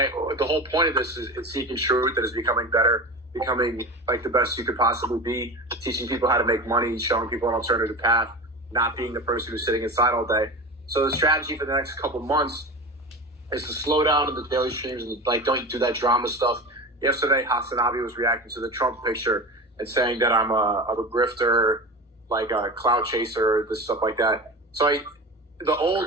whole point of this is seeking truth, that is becoming better, becoming like the best you could possibly be, teaching people how to make money, showing people an alternative path, not being the person who's sitting inside all day. So the strategy for the next couple months is to slow down in the daily streams and like don't do that drama stuff. Yesterday, Hasanabi was reacting to the Trump picture and saying that I'm a grifter, like a clout chaser, this stuff like that. So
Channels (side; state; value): both; normal; correlation 0.29